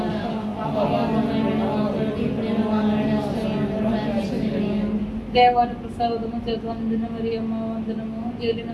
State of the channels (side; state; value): both; identical; correlation 1.00